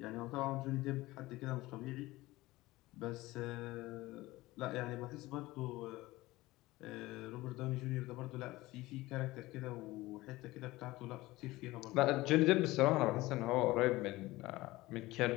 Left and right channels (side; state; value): right; quieter; 19.1 dB